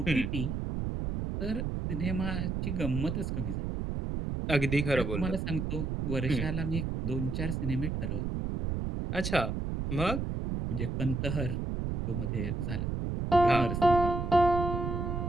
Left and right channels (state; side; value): noise; right; rumble, 2 dB below the sound